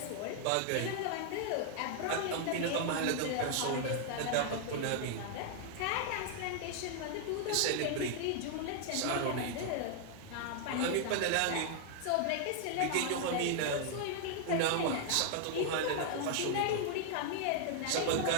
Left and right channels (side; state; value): both; different; correlation 0.00